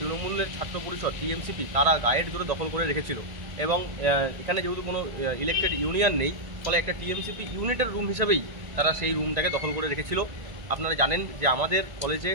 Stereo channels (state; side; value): late; left; 1.9 ms